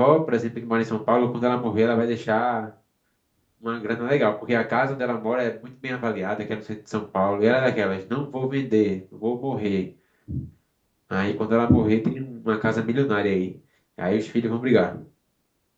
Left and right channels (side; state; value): both; identical; correlation 1.00